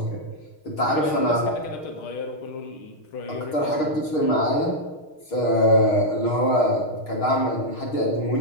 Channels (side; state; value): right; late; 6.4 ms